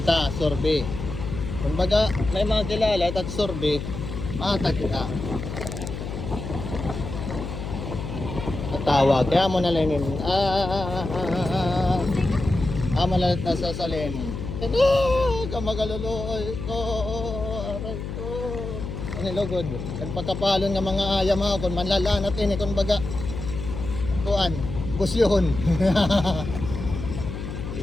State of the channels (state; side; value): noise; left; hum, 7 dB below the sound